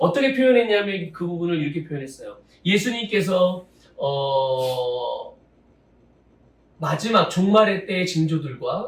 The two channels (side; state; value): both; identical; correlation 1.00